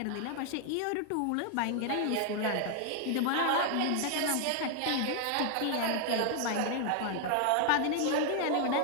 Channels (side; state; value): both; different; correlation 0.00